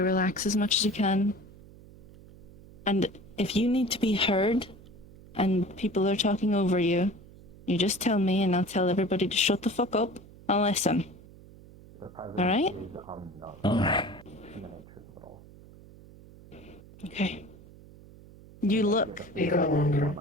as much as you can. And if you need to be heard and people are talking over you, you just tell me and I'll tell everybody to shut the fuck up and listen. Alright? Alright. Okay. You look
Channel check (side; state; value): right; noise; hum, 21 dB below the sound